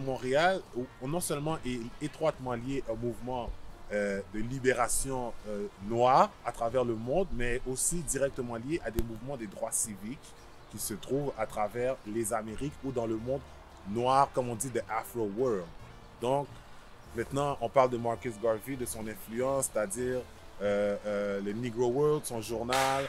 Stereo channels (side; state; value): both; identical; correlation 1.00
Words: non seulement est étroitement lié au mouvement de libération noire à travers le monde, mais aussi directement lié à des mouvements des droits civiques qui se trouvent à travers les Amériques ou dans le monde noir, comme on dit, de Afro World. Donc, maintenant, on parle de Marcus Garvey, de son influence, c'est-à-dire le Negro World, son journal,